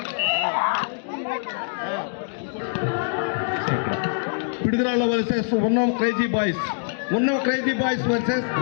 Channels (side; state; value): right; silent; digital silence